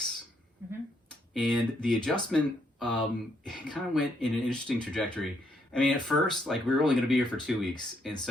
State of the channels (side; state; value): both; normal; correlation 0.74